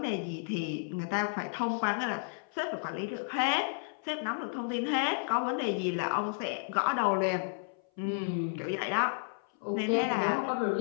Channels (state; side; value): silent; right; 56 dB below the other